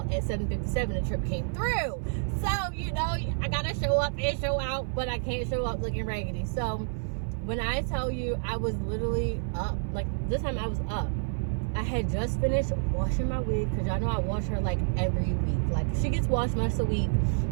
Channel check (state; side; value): silent; left; 55 dB below the other